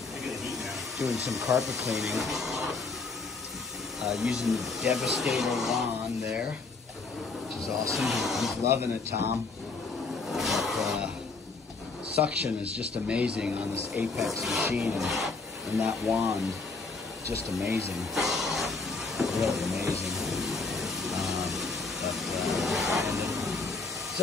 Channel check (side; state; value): right; quieter; 4.0 dB